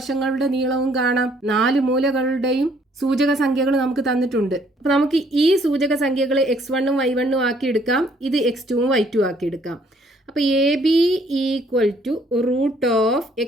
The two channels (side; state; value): both; normal; correlation 0.64